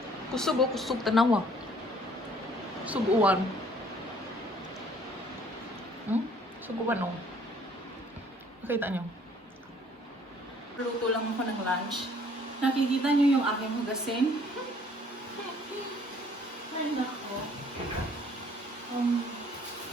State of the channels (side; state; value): both; normal; correlation 0.58